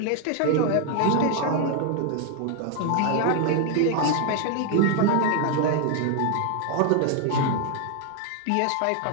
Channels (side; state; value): both; different; correlation 0.00